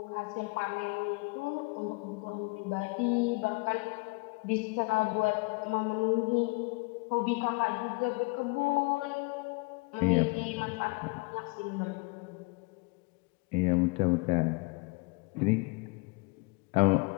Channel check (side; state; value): right; quieter; 27.5 dB